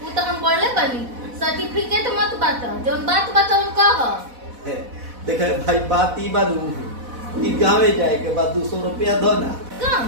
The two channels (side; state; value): left; late; 4.1 ms